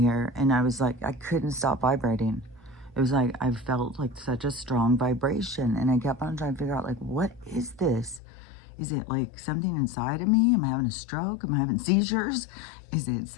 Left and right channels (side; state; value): right; drops out; at 8.2 s